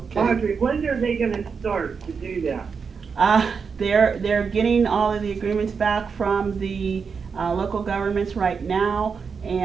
Audrey, when are they gonna start to do that? They're getting all of the agreements back from the local governments right now,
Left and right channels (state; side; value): quieter; left; 5.7 dB